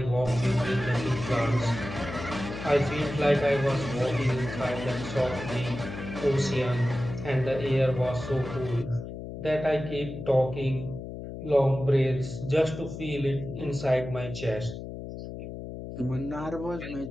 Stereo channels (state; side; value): noise; left; hum, 9 dB below the sound